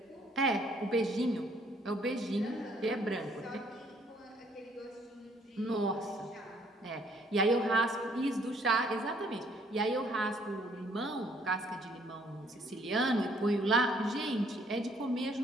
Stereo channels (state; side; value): normal; both; correlation 0.64